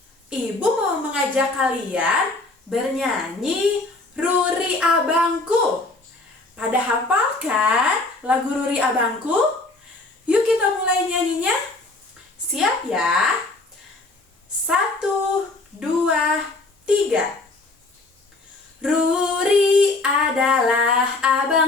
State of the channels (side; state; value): right; quieter; 3.1 dB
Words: Ibu mau mengajak kalian bernyanyi Ruri Abangku. Pada hafal kan lagu Ruri Abangku? Yuk kita mulai nyanyinya. Siap ya? 1, 2, 3. Ruri adalah